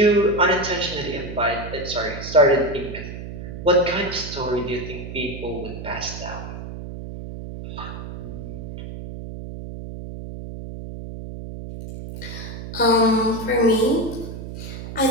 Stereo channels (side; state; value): right; noise; hum, 9 dB below the sound